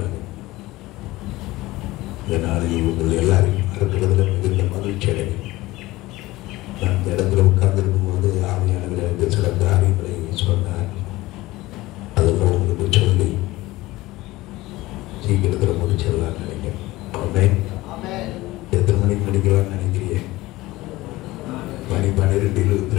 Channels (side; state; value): right; quieter; 18.8 dB